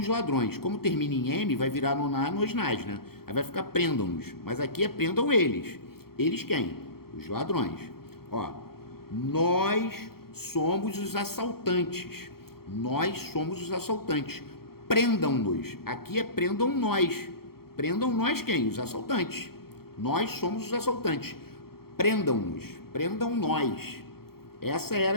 ladrões. Como termina em M, vai virar no na, nos nas, né? Aí vai ficar prendam-nos. Mas aqui é prendam eles. Eles quem? Os ladrões. Ó, nós somos os assaltantes. Nós somos os assaltantes. Prendam-nos. Aqui é prendam nós. Prendam nós quem? Os assaltantes. Nós somos os assaltantes. Prendam-nos. Prendam nós. Essa era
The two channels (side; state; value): right; late; 0.94 ms